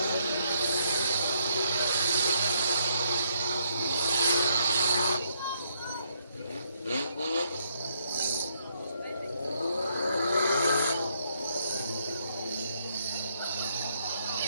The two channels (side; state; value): both; inverted; correlation -0.73